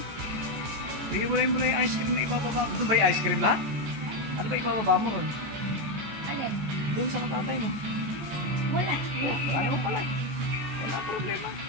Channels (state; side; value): late; left; 14 ms